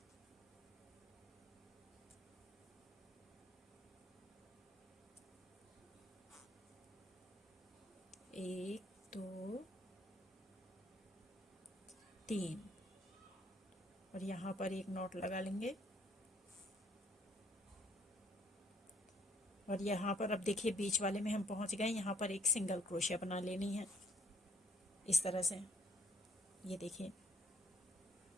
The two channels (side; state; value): both; normal; correlation 0.63